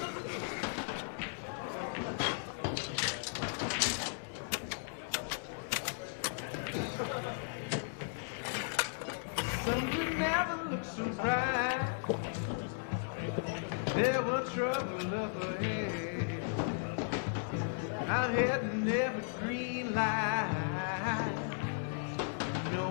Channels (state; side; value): silent; right; 54 dB below the other